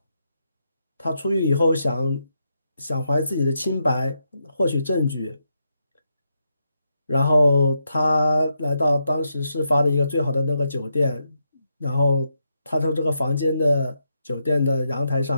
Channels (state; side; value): inverted; both; correlation -0.82